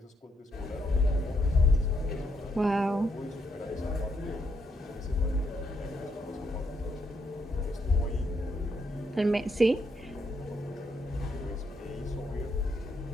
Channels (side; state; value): both; normal; correlation 0.76